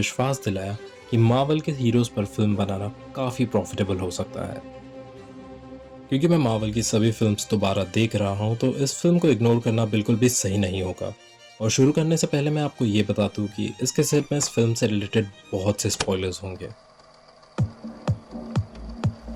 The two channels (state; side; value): identical; both; correlation 1.00